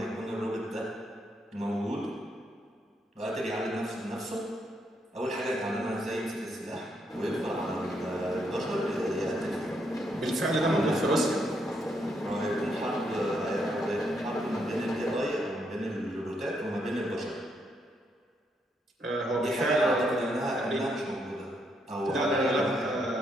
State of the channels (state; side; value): normal; both; correlation 0.76